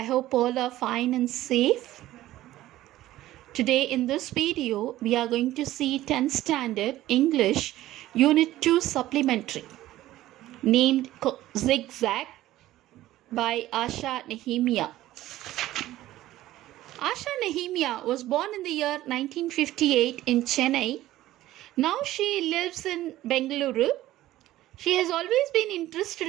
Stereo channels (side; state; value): left; quieter; 15.1 dB